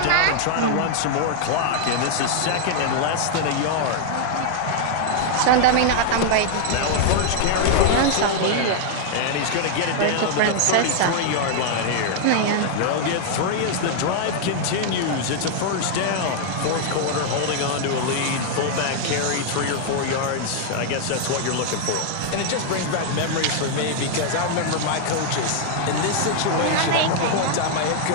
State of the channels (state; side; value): different; both; correlation 0.00